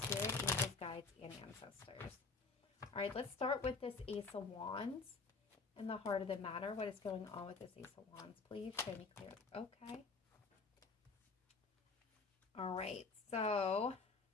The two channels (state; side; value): quieter; right; 4.3 dB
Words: spirit, angels, guides, and ancestors. All right, let's start with this Ace of Wands. In the heart of the matter, what is going on with this Ace of Wands? Please show me clear. Okay. All right, so